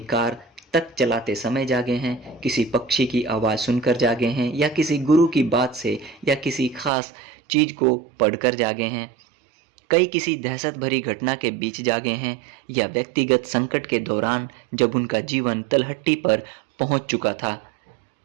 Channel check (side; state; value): left; drops out; at 6.9 s